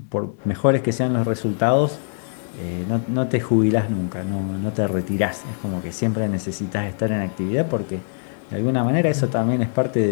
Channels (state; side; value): silent; right; 64 dB below the other